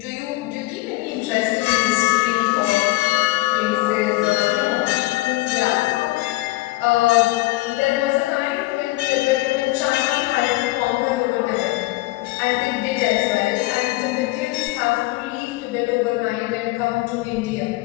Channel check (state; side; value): quieter; right; 20.4 dB